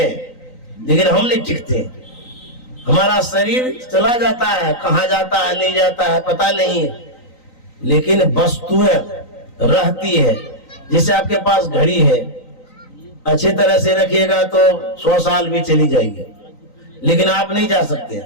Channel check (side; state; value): right; late; 3.9 ms